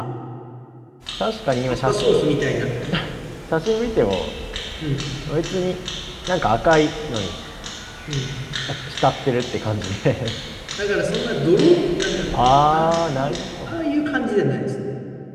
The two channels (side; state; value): both; identical; correlation 1.00